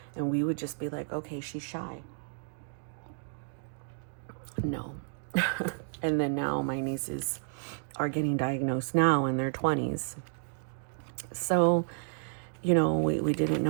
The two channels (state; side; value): silent; left; digital silence